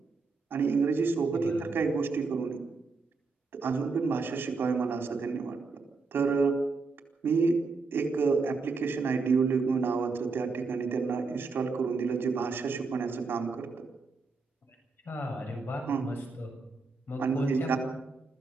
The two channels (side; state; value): left; quieter; 4.3 dB